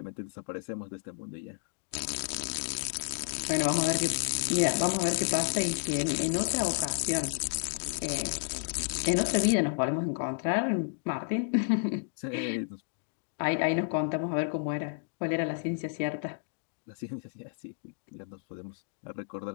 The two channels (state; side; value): silent; right; digital silence